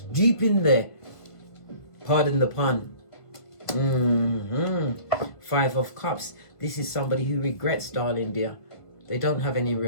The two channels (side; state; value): right; late; 1.5 ms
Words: in there. Pardon the pun. 5 of Cups. This is somebody who regrets, darling dear. They don't have any